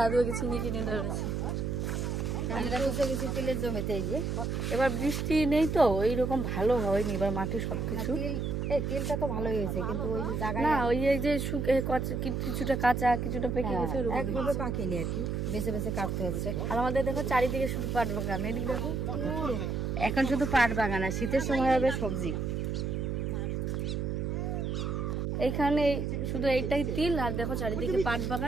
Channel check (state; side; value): noise; right; hum, 1 dB below the sound